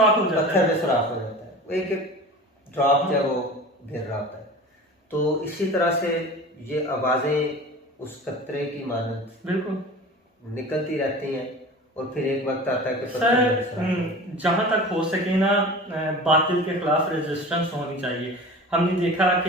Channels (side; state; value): both; normal; correlation 0.37